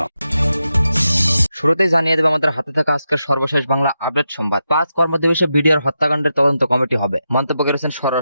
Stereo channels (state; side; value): inverted; both; correlation -0.88